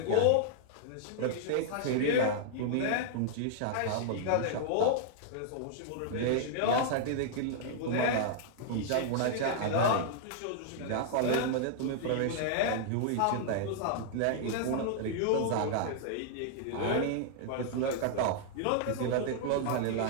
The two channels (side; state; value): both; different; correlation -0.01